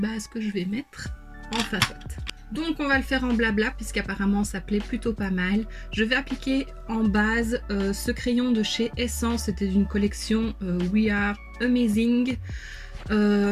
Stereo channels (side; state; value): both; identical; correlation 1.00